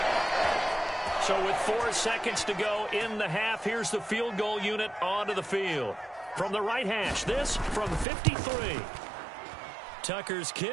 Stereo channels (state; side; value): drops out; left; at 8.1 s